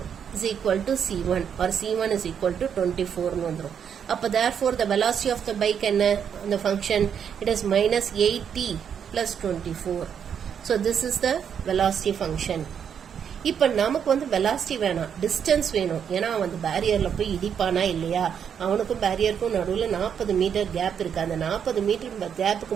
is equal to c1 or c1 is equal to 24 ன்னு வந்துரும். அப்போ therefore the velocity of the bike என்ன அந்த function it is minus 8t plus 24. So this is the velocity function. இப்போ நமக்கு வந்து velocity வேணாம், டிஸ்டன்ஸ் வேணும். ஏன்னா அவன் அந்த பேரியரில் போய் இடிப்பானா இல்லையா, அவனுக்கும் பேரியருக்கும் நடுவில் 40 மீட்டர் கேப் இருக்கு. அந்த 40 மீட்டர் கேப்புக்கு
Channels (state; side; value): quieter; left; 7.9 dB